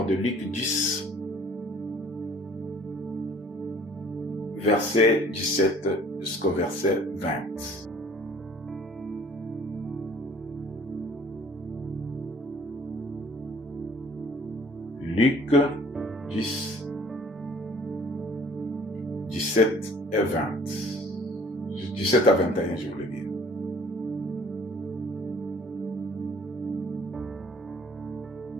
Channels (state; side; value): normal; both; correlation 0.54